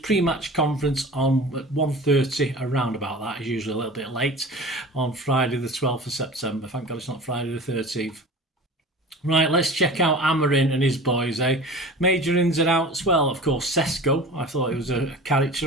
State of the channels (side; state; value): both; normal; correlation 0.38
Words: conference on 1:30, around about that. He's usually a little bit late on Friday the 12th of September. Thank God it's not Friday the 13th. Right, let's check out Amorim and his boys, eh? Major ins and outs. Well, of course, Sesko. I thought it was a